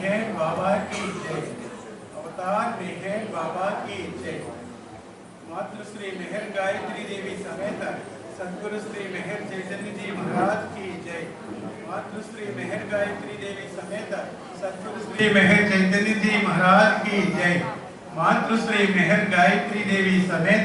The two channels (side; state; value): both; identical; correlation 1.00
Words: बाबा की जय। अवतार मेहर बाबा की जय। मातृश्री मेहर गायत्री देवी समेत सद्गुरु श्री मेहर चैतन्य जी महाराज की जय। मातृश्री मेहर गायत्री देवी समेत सद्गुरु श्री मेहर चैतन्य जी महाराज की जय। मातृश्री मेहर गायत्री देवी